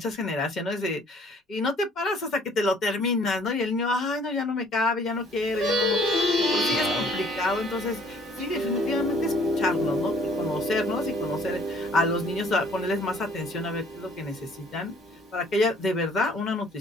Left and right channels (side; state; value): both; normal; correlation 0.58